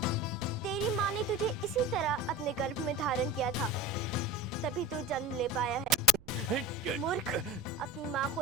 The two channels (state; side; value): noise; right; rumble, 23 dB below the sound